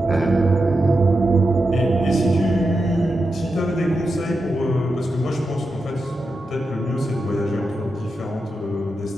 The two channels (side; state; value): both; normal; correlation 0.88